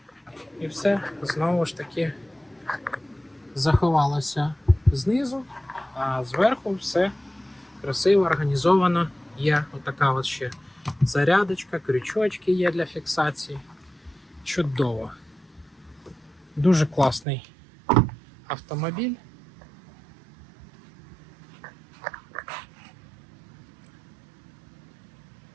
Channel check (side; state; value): left; drops out; at 17.2 s